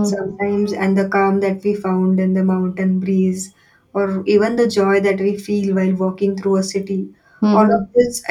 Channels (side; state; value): both; identical; correlation 1.00